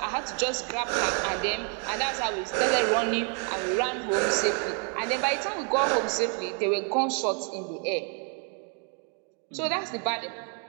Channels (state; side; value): quieter; left; 40.0 dB